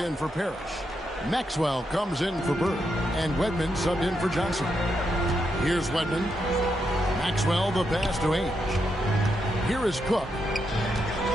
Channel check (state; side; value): normal; both; correlation 0.82